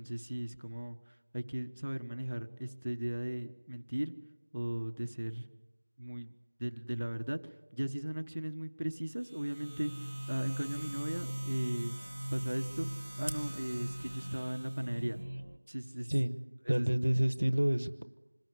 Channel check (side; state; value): both; inverted; correlation -1.00